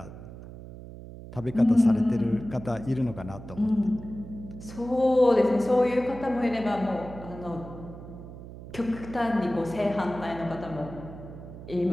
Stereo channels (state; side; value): noise; right; hum, 14 dB below the sound